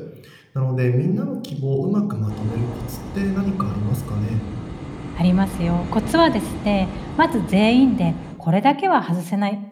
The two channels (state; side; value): identical; both; correlation 1.00